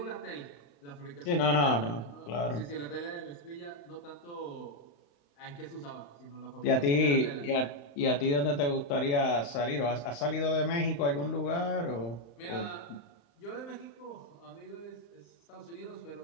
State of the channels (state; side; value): late; right; 35 ms